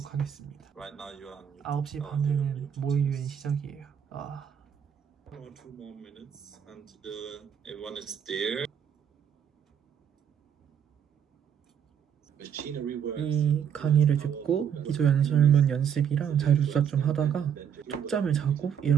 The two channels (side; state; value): left; quieter; 8.3 dB